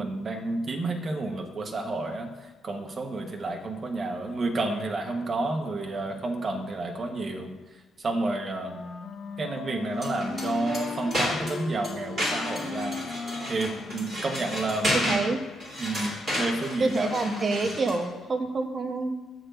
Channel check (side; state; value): both; normal; correlation 0.82